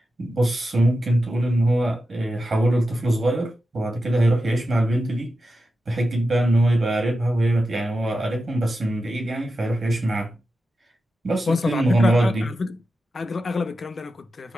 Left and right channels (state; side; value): normal; both; correlation 0.91